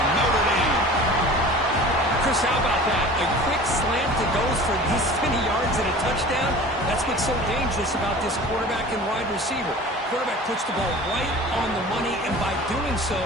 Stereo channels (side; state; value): both; normal; correlation 0.41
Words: Notre Dame. Chris, how about that? A quick slant that goes for this many yards and a touchdown. That's what's so dangerous about this quarterback and wide receiver. Quarterback puts the ball right on the money, and by doing so,